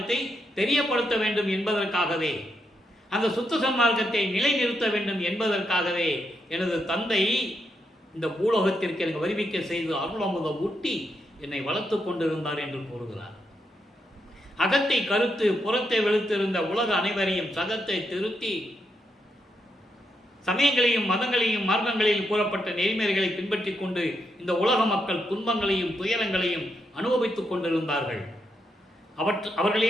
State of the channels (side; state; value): both; normal; correlation 0.81